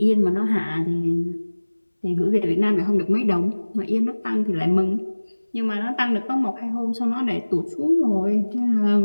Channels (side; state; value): both; inverted; correlation -1.00